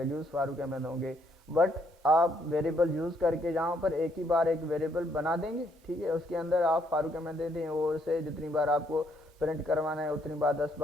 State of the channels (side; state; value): both; normal; correlation 0.70